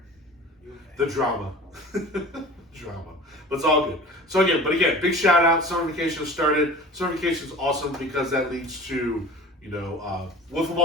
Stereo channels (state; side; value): normal; both; correlation 0.40